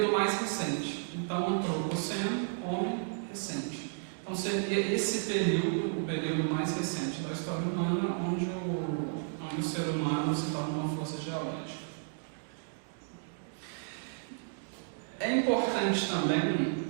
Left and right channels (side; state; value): left; silent; digital silence